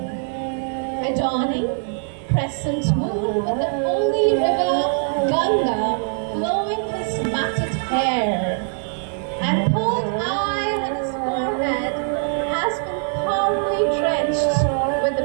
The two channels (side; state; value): left; silent; 64 dB below the other